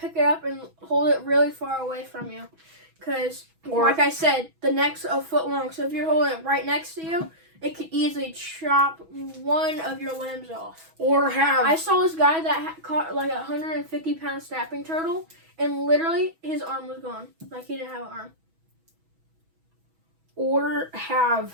it up and hold it really far away from you. Because, like I said, the neck's a foot long. So if you're holding it right next to you, it could easily chop one of your limbs off. Or have I saw this guy that caught like a 150-pound snapping turtle, and literally his arm was gone. Like he didn't have an arm.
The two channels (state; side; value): late; left; 6.1 ms